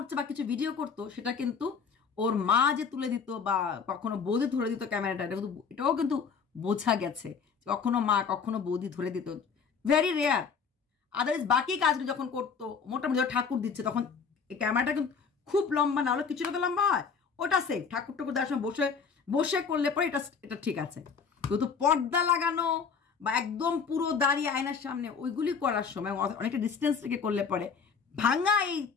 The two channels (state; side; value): quieter; right; 5.9 dB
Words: বা কিছু ভিডিও করতো, সেটা কিন্তু ওর মা যে তুলে দিত বা কখনো বৌদি ধরে দিত ক্যামেরাটা, এটাও কিন্তু বোঝা গেছে। কখনো মা কখনো বৌদি ধরে দিত, ভেরি রেয়ার। আদারওয়াইজ বাকি কাজগুলো যখন করতো, মোটামুটি ঠাকুর দিচ্ছে, তখন এই ক্যামেরাটা কিন্তু খুব লম্বা না হলে কিছুটা তো লম্বা হয়, ওটা সেফ। ঠাকুর দেওয়ার সময় বসে করলে পরে এটা ঠিক আছে, কিন্তু পর্দা লাগানো বা একদম পুরো দাঁড়িয়ে আয়নার সামনে ওইগুলি করার সময় অনেকটা ডিস্টেন্স থেকে করলে পরে ভাঙা এই